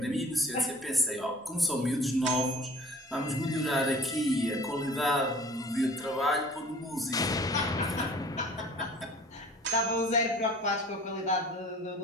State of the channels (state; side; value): normal; both; correlation 0.48